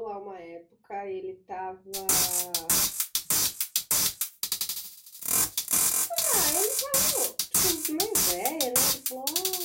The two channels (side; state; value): both; identical; correlation 1.00